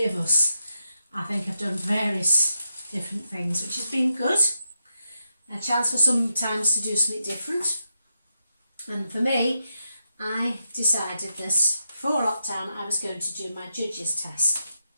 of us, I think, have done various different things, which has been good. A chance for sometimes to do something different. And for me, I decided that before lockdown I was going to do my judges test.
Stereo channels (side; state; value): both; inverted; correlation -0.85